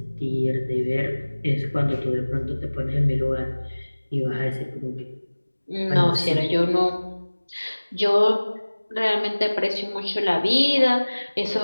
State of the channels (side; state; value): both; inverted; correlation -1.00